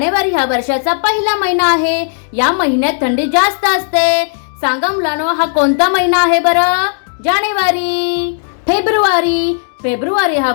हा वर्षाचा पहिला महिना आहे। या महिन्यात थंडी जास्त असते। सांगा मुलांनो, हा कोणता महिना आहे बरं? जानेवारी। फेब्रुवारी हा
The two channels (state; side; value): silent; right; digital silence